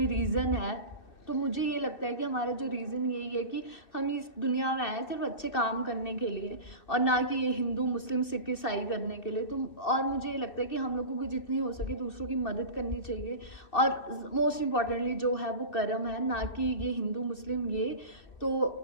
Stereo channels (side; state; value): right; late; 2.6 ms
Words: रीज़न है। तो मुझे ये लगता है कि हमारा जो रीज़न यही है कि हम इस दुनिया में आए सिर्फ अच्छे काम करने के लिए, और ना कि ये हिंदू मुस्लिम सिख ईसाई करने के लिए। तो और मुझे ये लगता है कि हम लोगों को जितनी हो सके दूसरों की मदद करनी चाहिए, और मोस्ट इम्पॉर्टेंटली जो है वो कर्म है, ना कि ये हिंदू मुस्लिम ये। तो